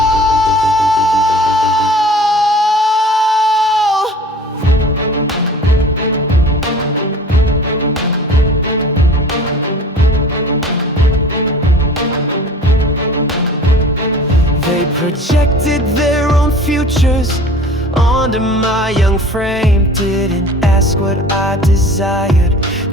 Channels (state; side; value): normal; both; correlation 0.43